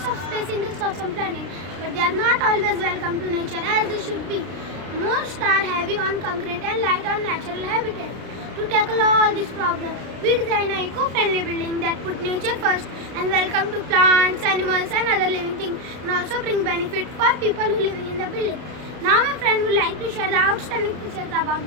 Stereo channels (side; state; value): left; late; 33 ms